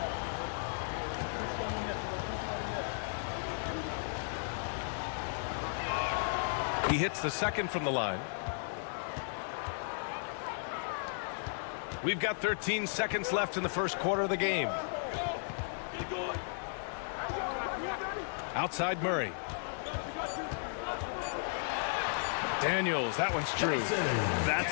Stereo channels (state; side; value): silent; right; digital silence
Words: He hits the second from the line. We've got 13 seconds left in the first quarter of the game. Outside Murray. Daniels, that one's true.